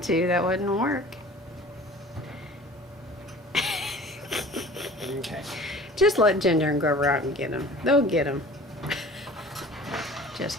you that wouldn't work. Okay. Just let Ginger and go out and get him. They'll get him.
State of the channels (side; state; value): both; normal; correlation 0.44